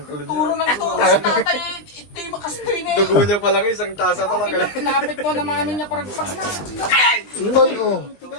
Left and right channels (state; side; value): late; right; 20 ms